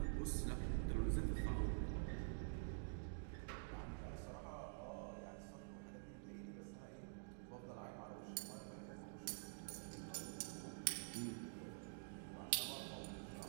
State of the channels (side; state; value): left; silent; digital silence